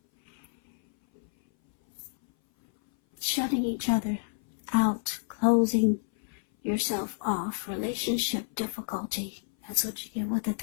Shutting each other out, closing yourself off, relationship difficulty. That's what you get with the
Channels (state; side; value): silent; right; 58 dB below the other